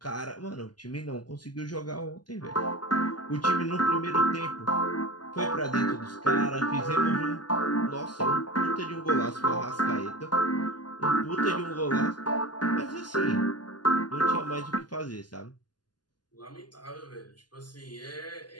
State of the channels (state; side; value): late; right; 0.70 ms